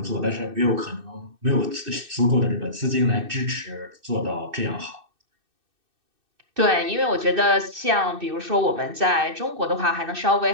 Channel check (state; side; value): late; left; 2.6 ms